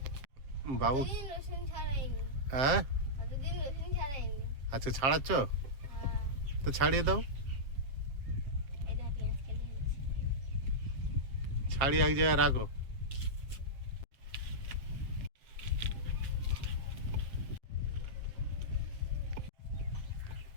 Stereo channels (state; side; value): late; left; 7.5 ms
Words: বাবু রসুন ছাড়াইনি, হ্যাঁ কতদিন রসুন ছাড়াইনি। আচ্ছা ছাড়াচ্ছ হ্যাঁ, তো ছাড়িয়ে দাও, এই দেখ পেঁয়াজ কেটে দিয়েছি। ছাড়িয়ে এক জায়গায় রাখো।